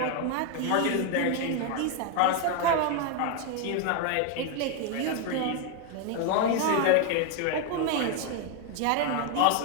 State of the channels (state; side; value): different; both; correlation 0.01